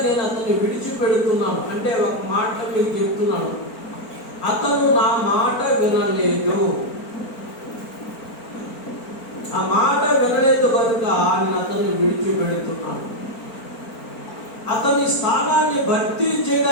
నేను అతన్ని విడిచిపెడుతున్నాను. అంటే ఒక మాట మీకు చెప్తున్నాను, అతను నా మాట వినలేదు. ఆ మాట వినలేదు కనుక నేను అతన్ని విడిచిపెడుతున్నాను. అతని స్థానాన్ని భర్తీ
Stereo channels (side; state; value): right; late; 4.4 ms